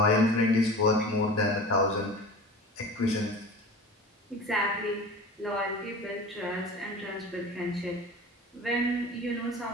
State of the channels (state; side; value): normal; both; correlation 0.36